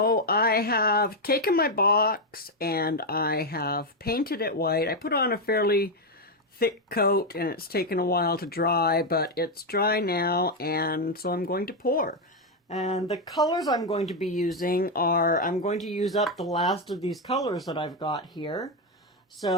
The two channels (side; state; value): both; normal; correlation 0.05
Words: I have taken my box and I have painted it white. I put on a fairly thick coat and it's taken a while to dry, but it's dry now, and so I'm going to pour. And the colors I'm going to be using are, I'm going to use up the last of these colors that I've got here.